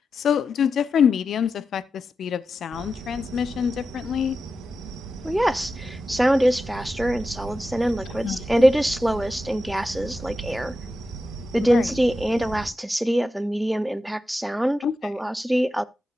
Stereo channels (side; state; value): both; normal; correlation 0.90